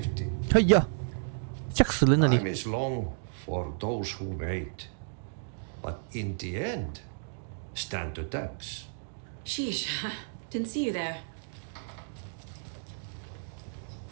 哎呀，吓死人了你！ Time is long for those who wait. But in the end, stand the thanks. Sheesh. Didn't see you there.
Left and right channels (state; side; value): silent; left; digital silence